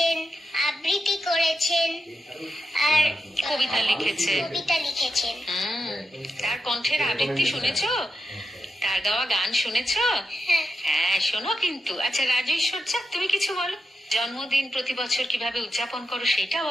আবৃত্তি করেছেন, আর কবিতা লিখেছেন। তার কণ্ঠের আবৃত্তি শুনেছো? তার গাওয়া গান শুনেছো? হ্যাঁ, শোনো কিন্তু। আচ্ছা রাজু ঈশ্বরচা, তুমি কিছু বলো। জন্মদিন প্রতি বছর কিভাবে উদযাপন করো সেটা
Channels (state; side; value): normal; both; correlation 0.87